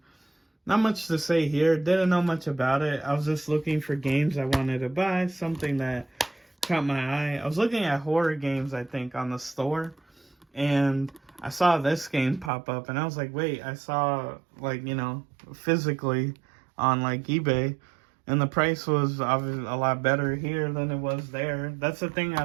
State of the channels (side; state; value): left; drops out; at 12.5 s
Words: Not much to say here. Didn't know much about it. I was just looking for games I wanted to buy. Something that caught my eye. I was looking at horror games, I think, on the store. And I saw this game pop up. And I was like, wait, I saw, like, you know, physically on, like, eBay. And the price was obviously a lot better here than it was there. That's the thing I